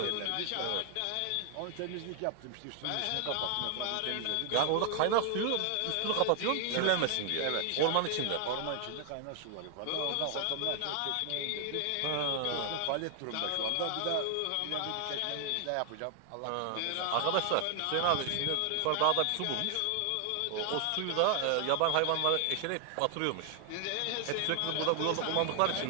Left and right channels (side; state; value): both; different; correlation 0.00